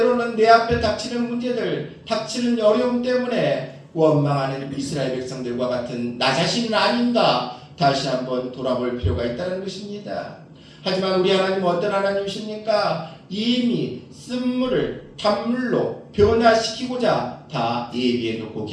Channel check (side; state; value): both; identical; correlation 1.00